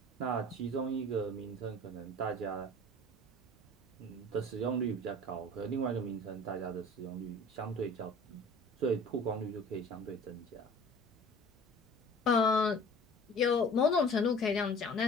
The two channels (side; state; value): both; normal; correlation 0.45